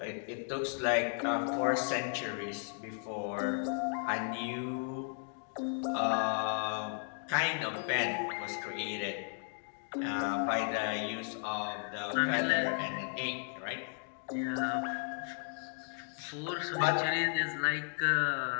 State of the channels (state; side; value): silent; right; 55 dB below the other